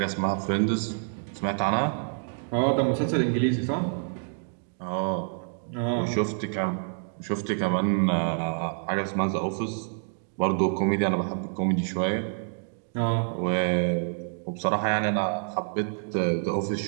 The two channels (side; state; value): left; silent; digital silence